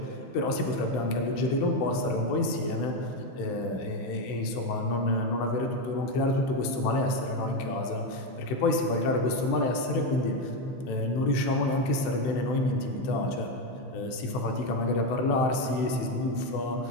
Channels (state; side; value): late; right; 16 ms